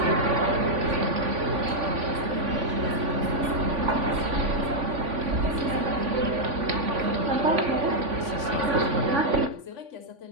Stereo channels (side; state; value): left; late; 3.5 ms